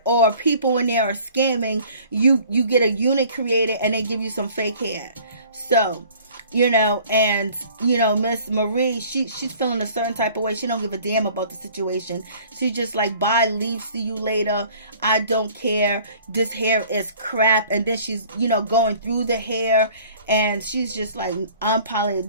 or people in there are scamming. You get a unit created and they give you some fake hair. So Miss Marie, she's feeling a certain type of way. She don't give a damn about the situation. She just like, bye, leave, see you later. I don't care. This hair is crap. And then she's, going through the hair, and she's just like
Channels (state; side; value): inverted; both; correlation -0.51